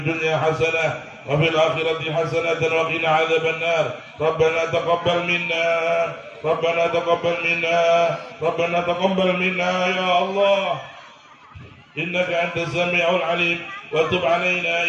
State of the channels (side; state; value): both; identical; correlation 1.00